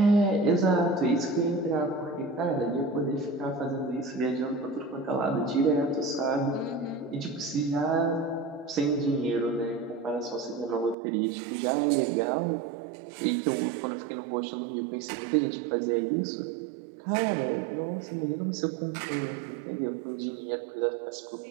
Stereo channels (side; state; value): left; drops out; at 11.0 s